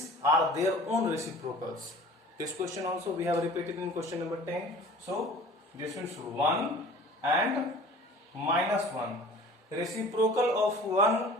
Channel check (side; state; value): both; normal; correlation 0.45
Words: are their own reciprocals. This question also we have repeated in question number 10. So this is 1 and minus 1. Reciprocal of 1